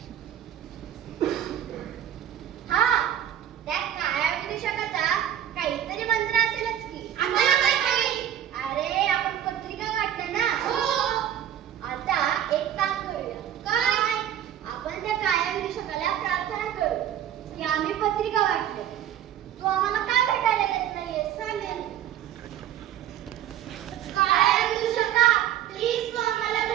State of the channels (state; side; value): quieter; left; 10.8 dB